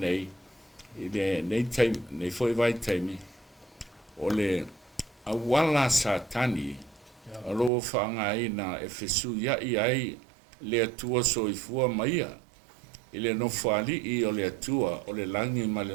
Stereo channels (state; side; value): drops out; left; at 7.7 s